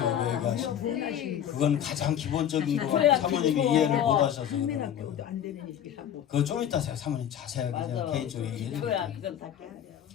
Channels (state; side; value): quieter; right; 9.9 dB